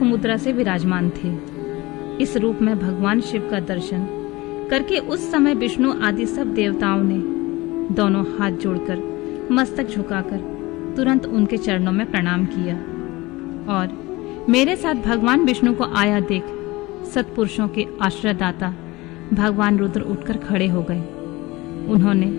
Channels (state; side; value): quieter; right; 21.2 dB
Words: मुद्रा से विराजमान थे। इस रूप में भगवान शिव का दर्शन करके उस समय विष्णु आदि सब देवताओं ने दोनों हाथ जोड़कर मस्तक झुकाकर तुरंत उनके चरणों में प्रणाम किया और मेरे साथ भगवान विष्णु को आया देख सत्पुरुषों के आश्रयदाता भगवान रुद्र उठकर खड़े हो गए। उन्होंने